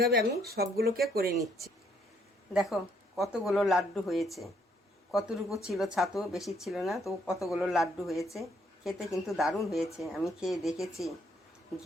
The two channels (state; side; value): normal; both; correlation 0.69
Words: আমি সবগুলোকে করে নিচ্ছি। দেখো কতগুলো লাড্ডু হয়েছে, কতটুকু ছিল ছাতু, বেশি ছিল না, তো কতগুলো লাড্ডু হয়েছে। খেতে কিন্তু দারুণ হয়েছে। আমি খেয়ে দেখেছি,